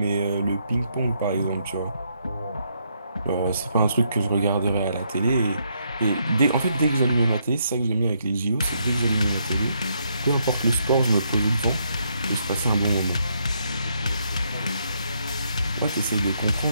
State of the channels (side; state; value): both; inverted; correlation -0.75